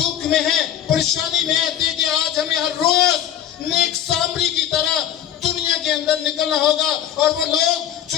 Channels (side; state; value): right; quieter; 10.5 dB